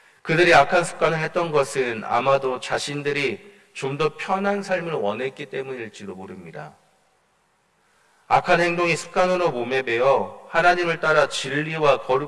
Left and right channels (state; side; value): identical; both; correlation 1.00